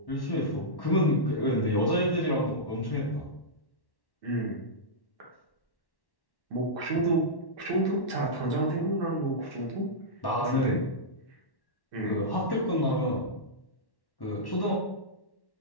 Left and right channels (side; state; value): right; late; 1.1 ms